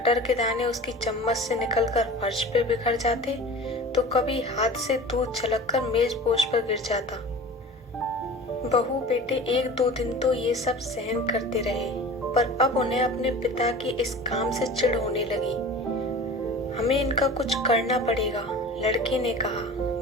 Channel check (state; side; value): normal; both; correlation 0.38